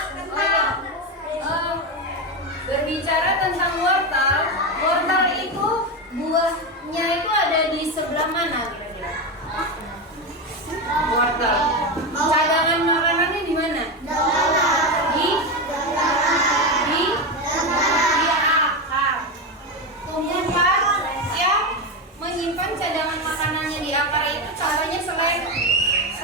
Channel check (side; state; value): both; normal; correlation 0.14